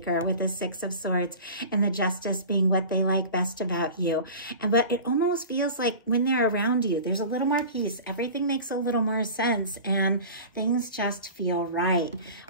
with the Six of Swords and the Justice being what they like best about you. But it almost feels like when they're around you, there's a little more peace. Everything makes a little more sense, and things just feel right.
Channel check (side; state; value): both; inverted; correlation -0.36